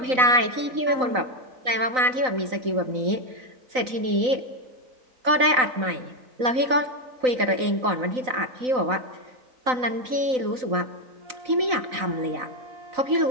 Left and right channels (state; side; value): late; left; 3.9 ms